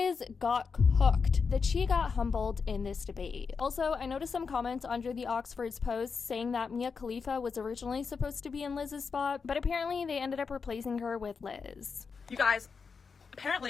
got cooked, that she got humbled in this debate. Also, I noticed some comments under the Oxford's post saying that Mia Khalifa was originally supposed to be in Liz's spot, but apparently they ended up replacing her with Liz. You guys,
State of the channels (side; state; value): right; quieter; 5.3 dB